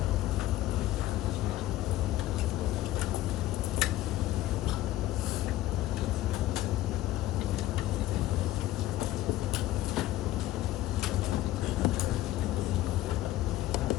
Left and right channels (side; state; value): right; quieter; 15.1 dB